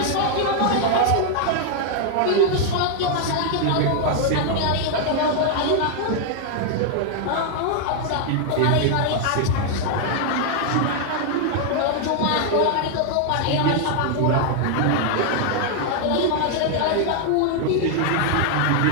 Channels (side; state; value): both; different; correlation 0.00